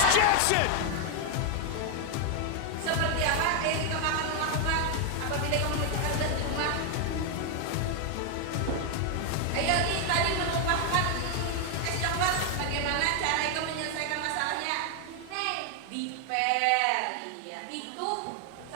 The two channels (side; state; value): both; different; correlation 0.00